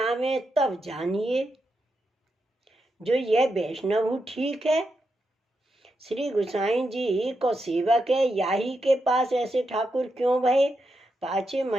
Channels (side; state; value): both; normal; correlation 0.85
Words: तब जानिए जो यह वैष्णव ठीक है। श्री गुसाई जी को सेवक है, याही के पास ऐसे ठाकुर क्यों भये। पाछे